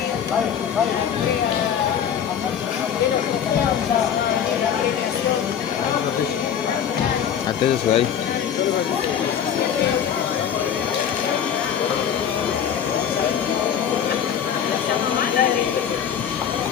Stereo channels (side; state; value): right; quieter; 8.5 dB